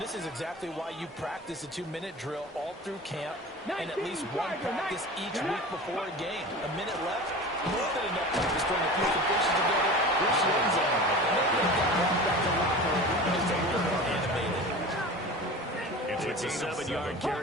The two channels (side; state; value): both; normal; correlation 0.35